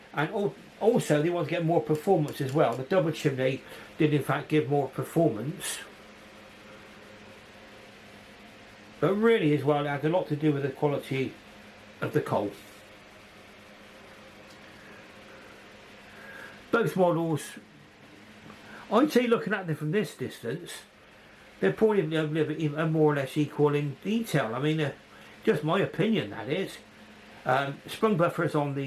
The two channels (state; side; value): identical; both; correlation 1.00